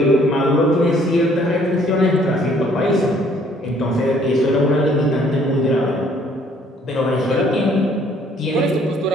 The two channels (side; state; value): both; normal; correlation 0.61